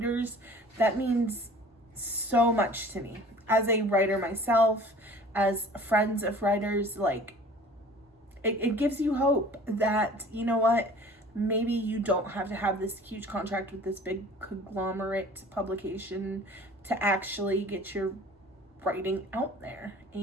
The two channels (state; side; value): normal; both; correlation 0.46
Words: That means so much to me as a writer myself, as friends of writers. Like it gives you hope that, you know what, maybe you don't have to have this huge contract with this big conglomerate publication to actually get your writing out there,